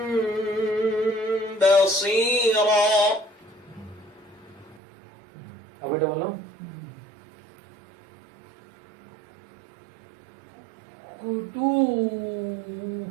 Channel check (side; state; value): left; drops out; at 4.8 s